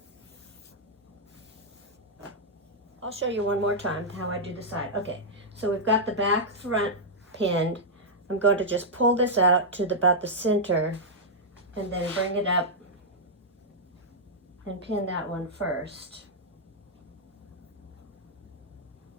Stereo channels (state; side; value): normal; both; correlation -0.07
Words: I'll show you one more time how I do the side. Okay, so we've got the back front pinned. I'm going to just pull this out to about the center and then bring it up and pin that one first.